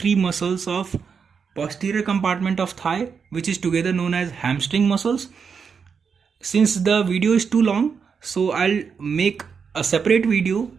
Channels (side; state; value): left; quieter; 6.1 dB